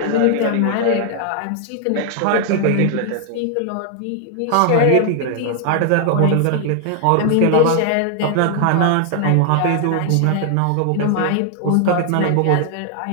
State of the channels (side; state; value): both; different; correlation 0.00